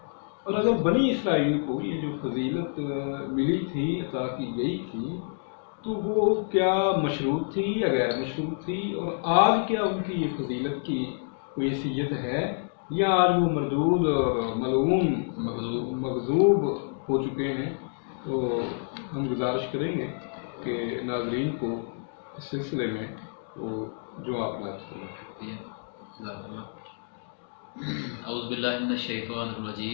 اور اگر بنی اسرائیل کو یہ جو فضیلت ملی تھی، عطا کی گئی تھی، تو وہ کیا مشروط تھی یا غیر مشروط تھی، اور آج کیا ان کی یہ فضیلت کی کوئی حیثیت ہے یا آج وہ مردود اور ملعون مغضوب ہو چکے ہیں۔ تو ہم گزارش کریں گے کہ ناظرین کو اس سلسلے میں وہ جو آپ بات کریں۔ اعوذ باللہ من الشیطان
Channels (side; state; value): right; silent; digital silence